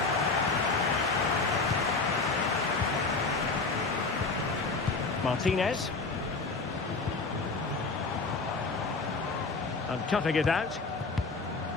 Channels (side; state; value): right; quieter; 4.0 dB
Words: Martinez. And cutting it out.